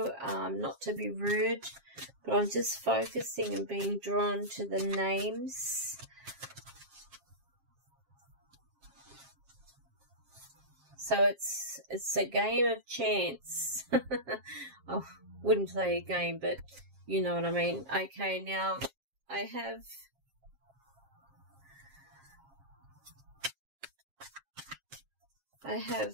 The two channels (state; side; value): late; left; 7.4 ms